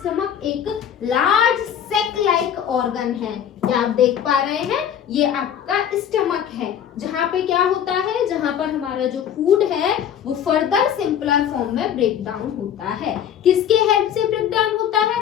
एक लार्ज सेक लाइक ऑर्गन है। ये आप देख पा रहे हैं, ये आपका स्टमक है जहाँ पे क्या होता है, जहाँ पर हमारा जो फूड है वो फर्दर सिंपलर फॉर्म में ब्रेक डाउन होता है। किसके हेल्प से ब्रेक डाउन होता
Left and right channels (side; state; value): right; quieter; 9.3 dB